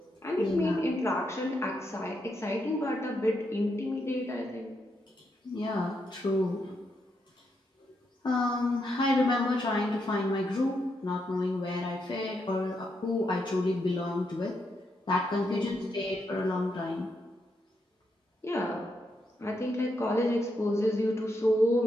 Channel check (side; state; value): both; normal; correlation 0.81